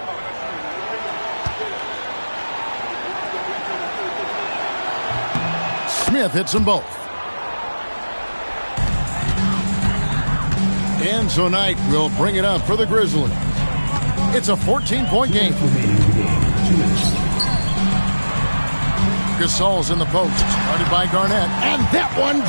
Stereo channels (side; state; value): both; inverted; correlation -1.00